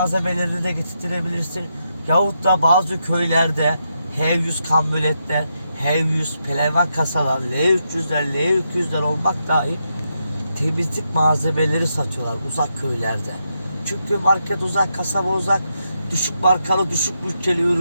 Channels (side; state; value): both; inverted; correlation -0.83